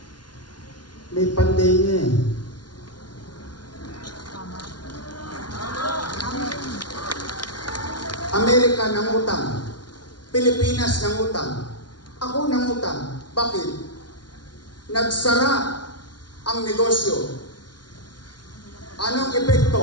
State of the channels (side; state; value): right; late; 0.70 ms